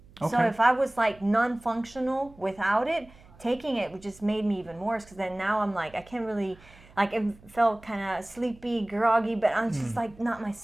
Okay. So if I was like non-functional without it, taking it just made me even worse because then now I'm like, I can't really, like it felt kind of sleepy, groggy, but I'm just like not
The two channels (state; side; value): noise; right; hum, 24 dB below the sound